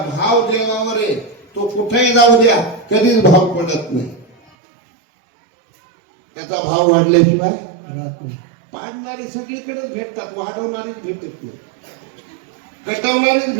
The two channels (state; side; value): drops out; left; at 4.4 s